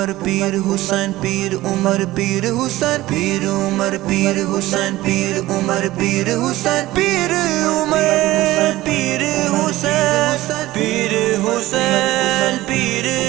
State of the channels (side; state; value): left; quieter; 17.1 dB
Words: پیر حسین پیر عمر پیر حسین پیر عمر پیر حسین پیر عمر پیر حسین پیر عمر پیر حسین پیر حسین پیر